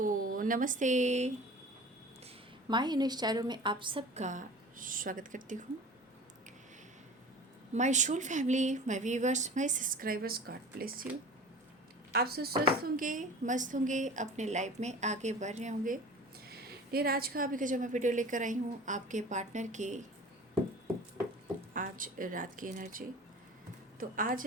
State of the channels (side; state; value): both; normal; correlation 0.40